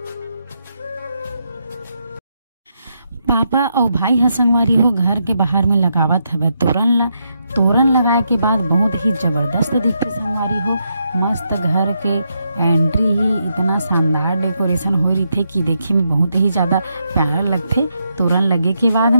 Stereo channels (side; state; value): both; inverted; correlation -0.81